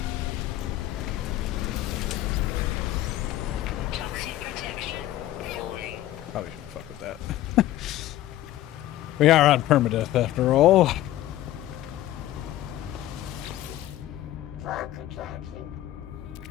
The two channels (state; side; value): quieter; right; 14.2 dB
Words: Toxic protection falling. Probably shouldn't fuck with that. We are on permadeath after all.